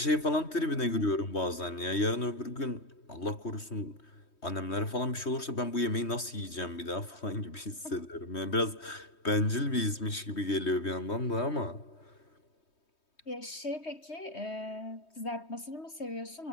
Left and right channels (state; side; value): late; right; 3.2 ms